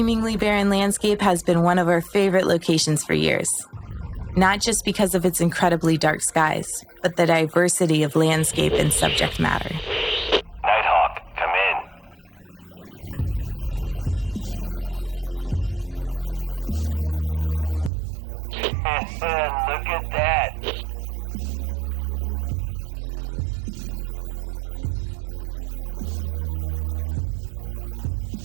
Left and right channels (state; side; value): drops out; left; at 17.9 s